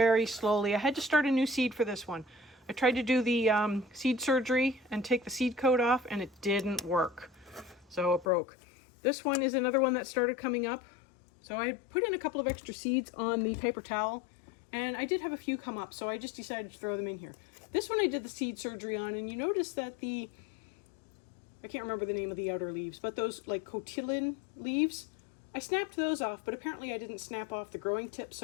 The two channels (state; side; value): drops out; right; at 8.2 s